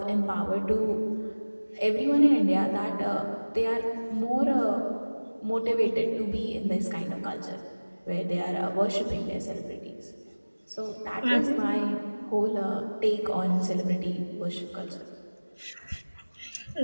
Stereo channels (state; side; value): inverted; both; correlation -1.00